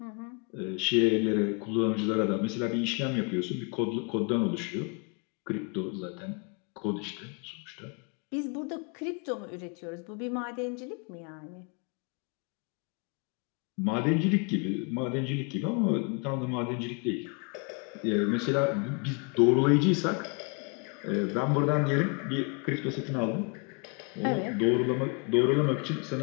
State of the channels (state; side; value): quieter; right; 34.4 dB